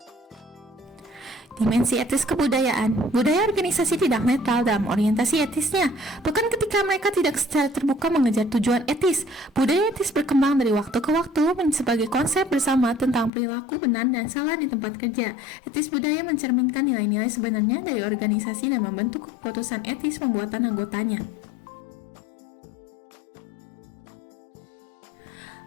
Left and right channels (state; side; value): drops out; right; at 13.3 s